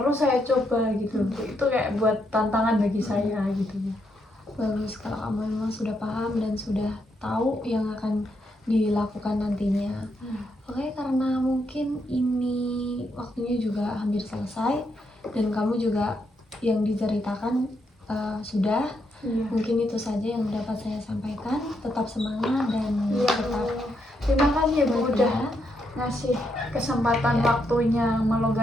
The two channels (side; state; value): both; normal; correlation 0.79